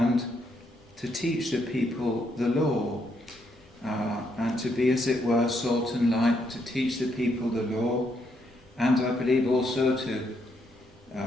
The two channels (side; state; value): both; normal; correlation 0.76